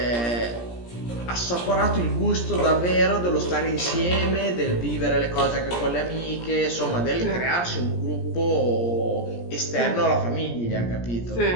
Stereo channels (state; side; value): late; right; 17 ms